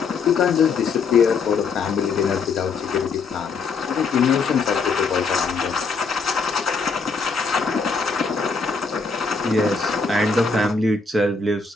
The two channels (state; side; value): quieter; right; 4.7 dB